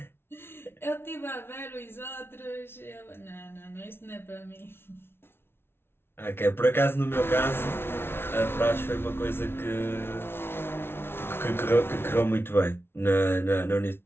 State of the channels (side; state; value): right; late; 0.11 ms